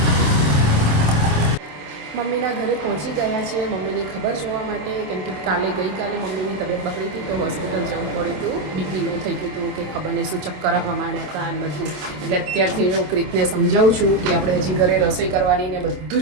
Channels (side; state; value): left; late; 27 ms